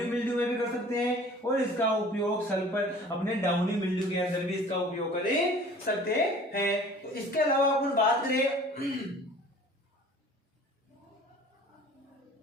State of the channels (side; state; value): both; normal; correlation 0.47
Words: मिल्ड्यू में भी कर सकते हैं, और इसका उपयोग सल्फर, अपने डाउनी मिल्ड्यू के अंदर भी इसका उपयोग कर सकते हैं। तो इसके अलावा अपन बात करें,